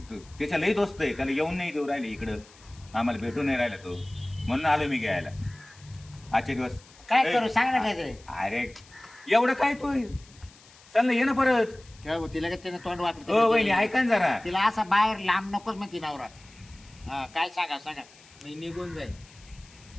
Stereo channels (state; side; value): noise; left; hiss, 25 dB below the sound